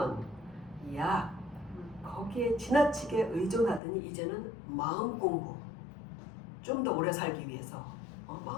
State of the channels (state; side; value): drops out; right; at 3.8 s